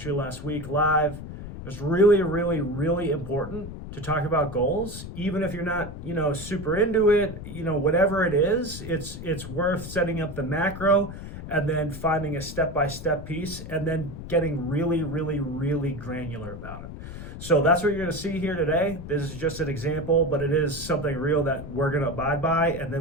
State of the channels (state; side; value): noise; left; rumble, 10 dB below the sound